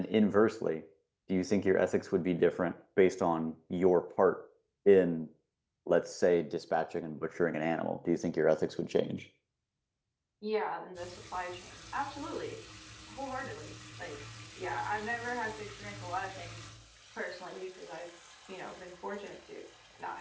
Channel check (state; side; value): identical; both; correlation 1.00